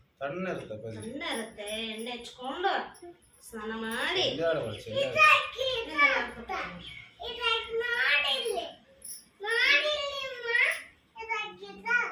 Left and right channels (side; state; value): both; identical; correlation 1.00